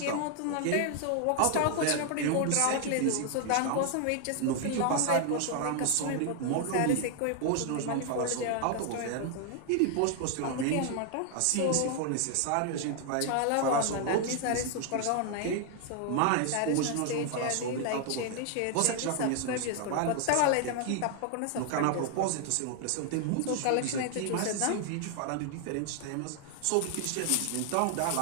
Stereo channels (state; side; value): different; both; correlation 0.00